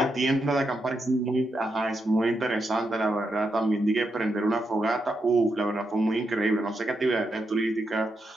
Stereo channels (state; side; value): normal; both; correlation 0.83